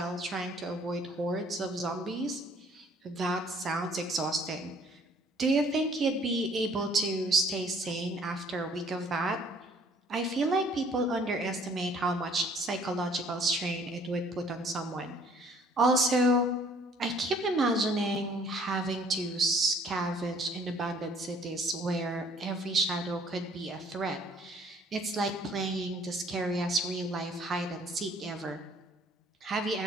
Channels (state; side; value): normal; both; correlation 0.58